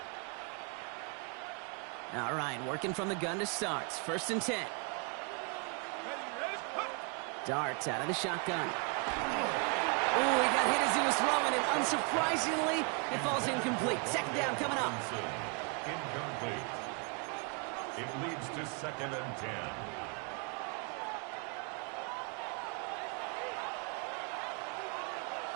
All right, working from the gun to start. First and 10. Dart out of the shotgun. Ooh, he got hit as he was throwing, and unsurprisingly, it falls incomplete. Second down coming up. Incomplete. It leads to second and 10.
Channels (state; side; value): quieter; left; 36.4 dB